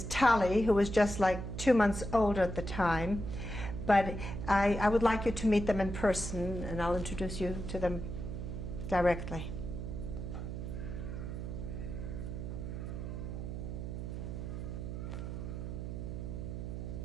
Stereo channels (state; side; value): noise; right; hum, 5 dB below the sound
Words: Tali, who was just like 2 months older at the time. But I would like you to meet them in person, and I'll introduce you to them directly.